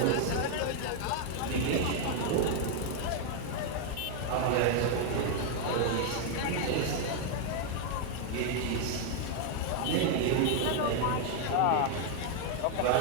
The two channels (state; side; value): different; both; correlation 0.00